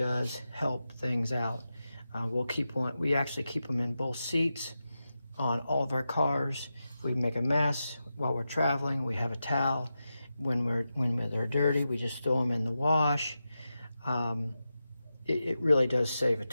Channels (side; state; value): both; inverted; correlation -0.91